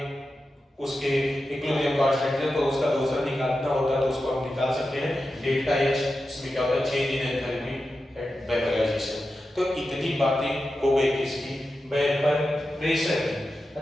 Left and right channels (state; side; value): normal; both; correlation 0.91